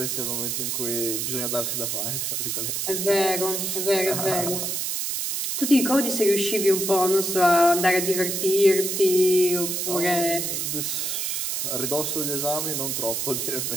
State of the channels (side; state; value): right; noise; hiss, 1 dB below the sound